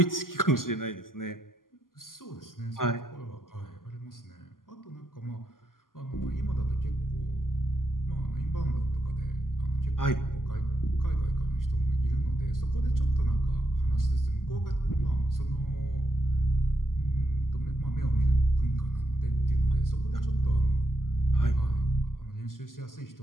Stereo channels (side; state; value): right; late; 0.91 ms